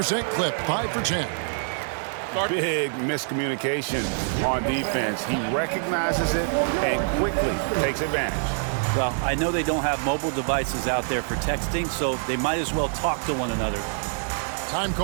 clip, 5 for 10. Big miscommunication on defense. He recognizes it and quickly takes advantage. Well, I know they don't have mobile devices out there for texting, so they might as well talk to one another. Time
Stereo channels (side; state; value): left; silent; digital silence